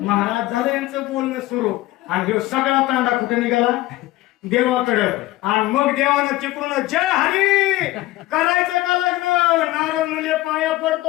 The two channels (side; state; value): right; quieter; 17.5 dB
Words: झालं यांचं बोलणं सुरू. आणि ह्यो सगळा तांडा कुठे निघाला देवाकडं. आणि मग देवानं चिपळून जय हरी करायचं का लग्न. नारद मुले पाया